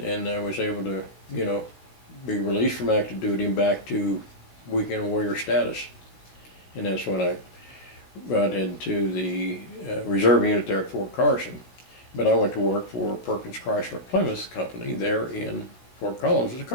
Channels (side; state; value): right; late; 16 ms